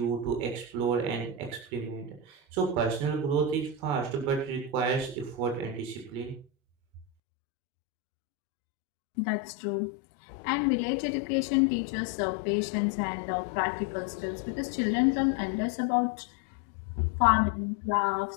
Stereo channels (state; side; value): drops out; right; at 7.1 s